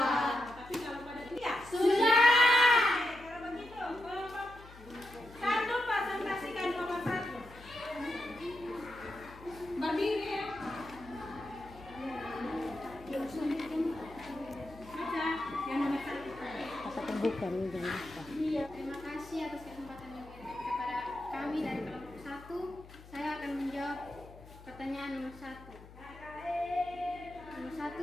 Tapi kalau pada dia sudah. Kalau begitu kelompok 1 presentasikan nomor 1. Berdiri ya. Baca yang nomor 1. Iya, terima kasih atas kesempatan yang diberikan kepada kami dari kelompok 1. Saya akan menjawab pertanyaan nomor 1. Nomor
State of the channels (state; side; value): noise; left; hum, 19 dB below the sound